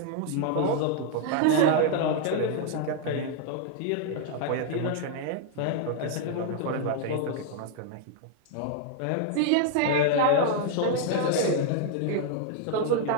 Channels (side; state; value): both; different; correlation 0.00